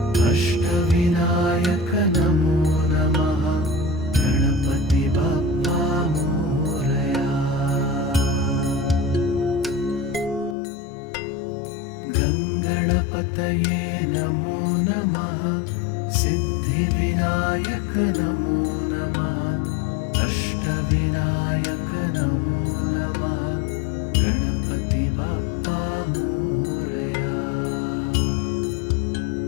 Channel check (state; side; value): drops out; right; at 10.6 s